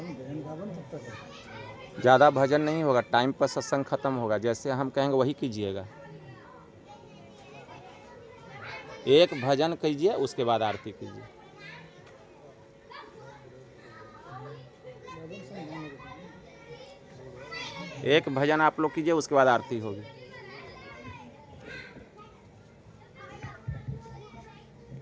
रावण तब तक है। ज़्यादा भजन नहीं होगा, टाइम पर सत्संग खत्म होगा, जैसे हम कहेंगे वही कीजिएगा। एक भजन कीजिए, उसके बाद आरती कीजिए। रावण से नहीं होगा। एक भजन आप लोग कीजिए, उसके बाद आरती होगी।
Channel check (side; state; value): both; identical; correlation 1.00